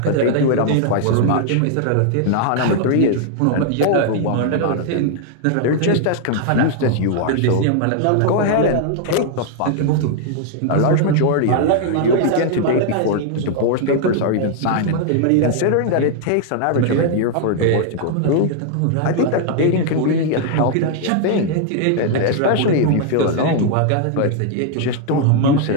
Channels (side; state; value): both; different; correlation 0.00